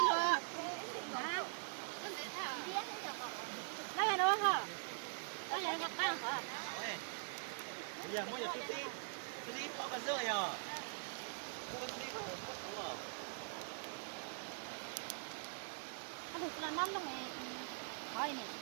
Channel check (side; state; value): left; silent; digital silence